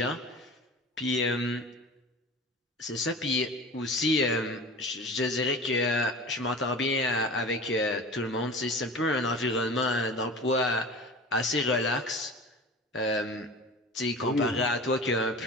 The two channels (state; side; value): normal; both; correlation 0.36